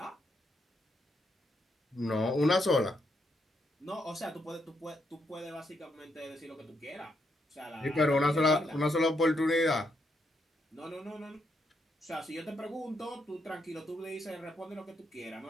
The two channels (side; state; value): both; normal; correlation 0.78